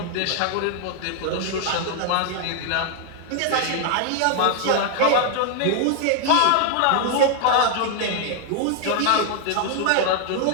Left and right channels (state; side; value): different; both; correlation 0.00